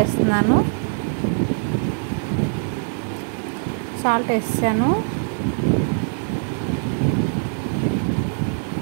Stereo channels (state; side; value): silent; left; digital silence